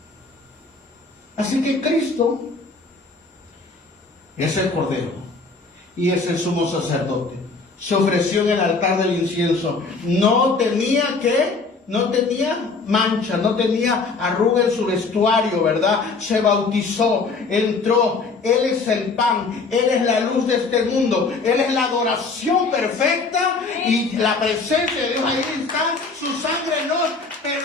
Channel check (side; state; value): right; quieter; 4.1 dB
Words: Así que Cristo es el Cordero y es el sumo sacerdote. Se ofreció en el altar del incienso. No tenía mancha, no tenía arruga en su vestuario, ¿verdad? Se bautizó, entró. Él es el pan, Él es la luz de este mundo, Él es la adoración perfecta y la presencia de Dios ahí está. Su sangre nos